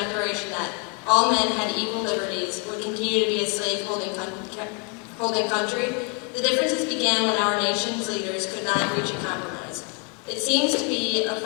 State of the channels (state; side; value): quieter; right; 36.5 dB